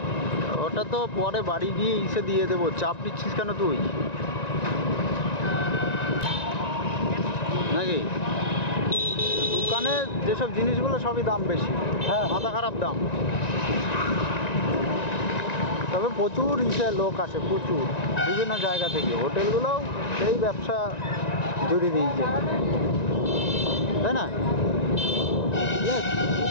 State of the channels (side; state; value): right; late; 1.9 ms